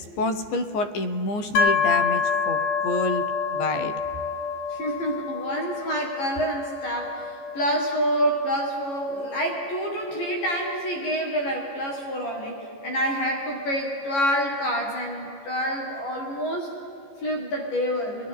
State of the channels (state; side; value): late; right; 14 ms